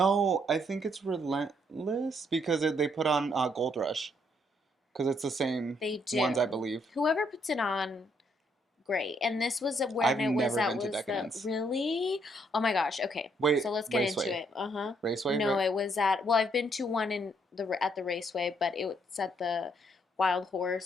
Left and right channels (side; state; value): both; normal; correlation 0.71